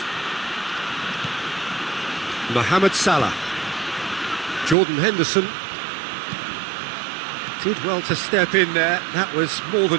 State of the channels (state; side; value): drops out; left; at 4.8 s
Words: Mohamed Salah. Jordan Henderson. Did well to step in there. That was more